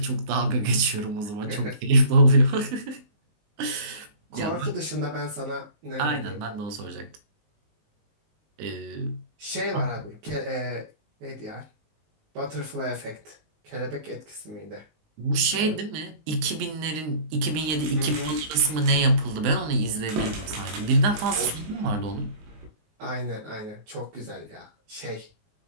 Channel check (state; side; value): late; left; 19 ms